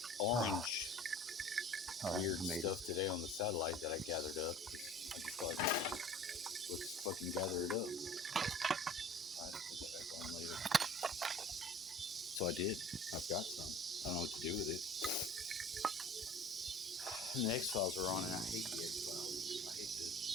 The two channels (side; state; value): both; normal; correlation 0.45